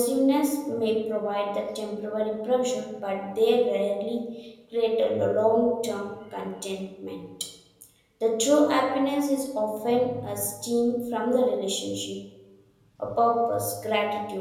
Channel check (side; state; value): both; identical; correlation 1.00